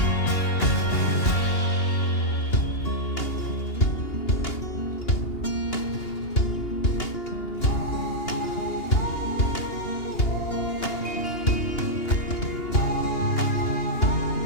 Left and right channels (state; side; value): late; right; 2.8 ms